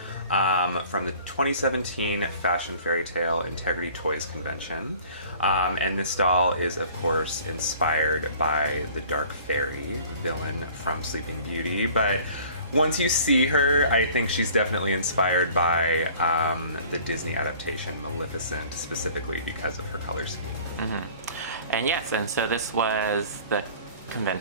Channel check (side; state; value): both; inverted; correlation -0.49